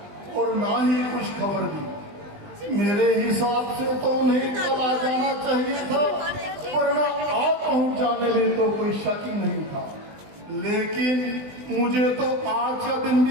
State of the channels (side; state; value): left; late; 20 ms